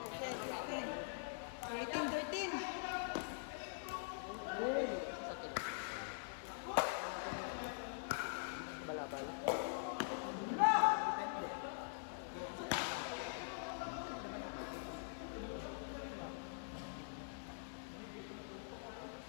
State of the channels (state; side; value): silent; right; digital silence